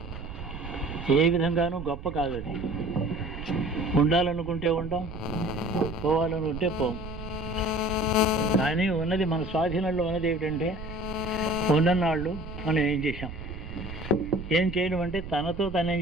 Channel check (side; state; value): right; noise; rumble, 10 dB below the sound